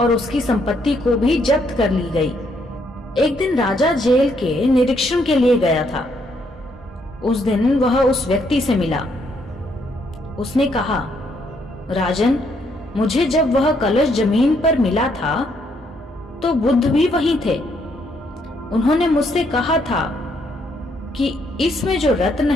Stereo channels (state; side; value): normal; both; correlation 0.72